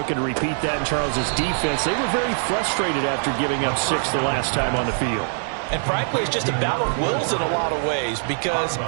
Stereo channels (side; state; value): left; silent; digital silence